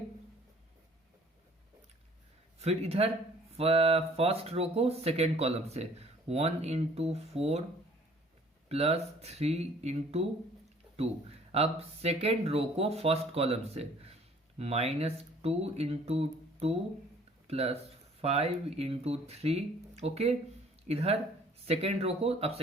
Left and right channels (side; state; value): both; normal; correlation 0.55